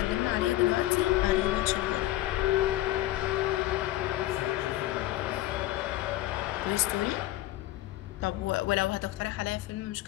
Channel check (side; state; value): right; quieter; 15.8 dB